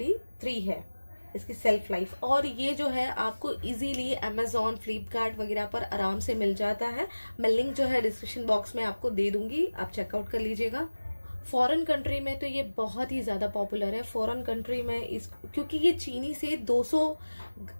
है इसकी सेल्फ लाइफ। और ये जो है आपको इजीली अमेजोन, फ्लिपकार्ट वगैरह पर आराम से मिल जाता है। मैं लिंक जो है डिस्क्रिप्शन बॉक्स में आपको दे दूंगी, आप चेकआउट कर लीजिएगा। फॉरेन कंट्री में तो ये बहुत ही ज्यादा पॉपुलर है। फॉरेन कंट्री में क्योंकि ये चीनी से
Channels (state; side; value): inverted; both; correlation -1.00